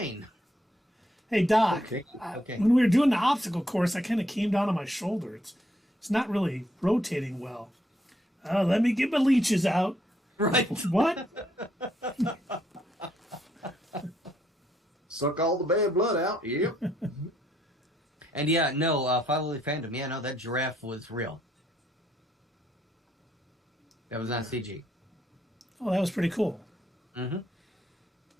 Hey, Doc, Okay. When we were doing the obstacle course, I kind of came down on my shoulder. It's not really rotating well. Let me get my leeches out. Right. What? Suck all the bad blood out. Yep. And yeah, no, follow the fandom. Yeah, no, that giraffe was real. That was not CG. Oh, that was pretty cool. Mm-hmm.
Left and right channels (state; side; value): normal; both; correlation 0.73